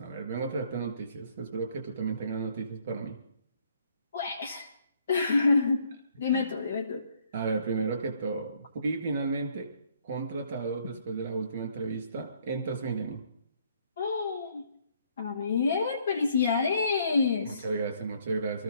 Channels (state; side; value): inverted; both; correlation -0.65